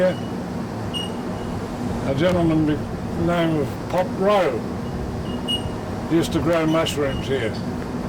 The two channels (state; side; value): identical; both; correlation 1.00